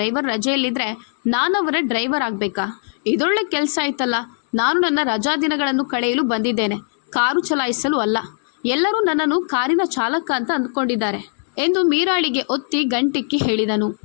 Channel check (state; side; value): silent; right; digital silence